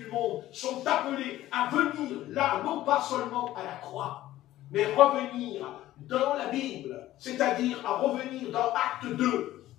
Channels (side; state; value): right; quieter; 14.7 dB